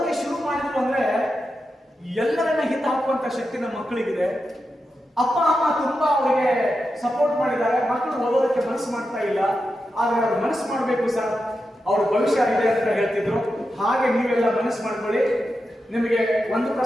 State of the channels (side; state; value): both; normal; correlation 0.89